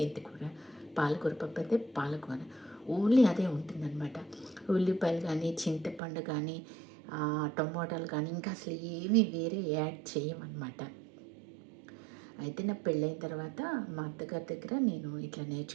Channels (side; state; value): left; drops out; at 6.0 s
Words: పాలకూర పప్పు అయితే పాలకూర, ఓన్లీ అదే ఉంటుందన్నమాట. ఉల్లిపాయలు కానీ, చింతపండు కానీ, టమోటాలు కానీ ఇంకా అసలు ఏమీ వేరే యాడ్ చేయమన్నమాట. అయితే నా పెళ్ళైన తర్వాత మా అత్తగారి దగ్గర నేను ఇట్లా